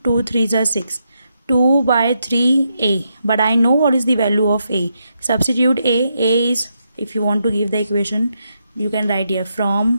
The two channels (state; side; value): inverted; both; correlation -0.81